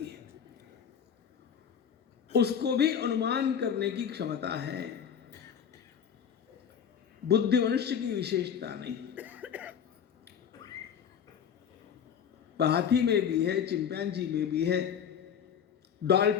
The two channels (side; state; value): right; quieter; 8.0 dB